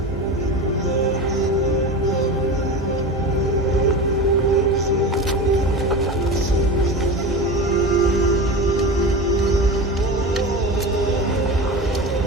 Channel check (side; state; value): both; normal; correlation 0.28